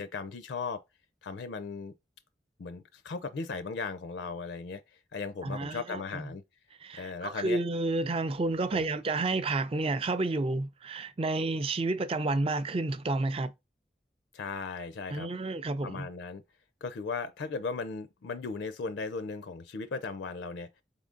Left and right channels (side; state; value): both; normal; correlation 0.45